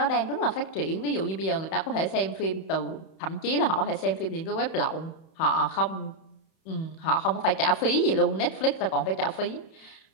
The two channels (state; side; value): late; right; 31 ms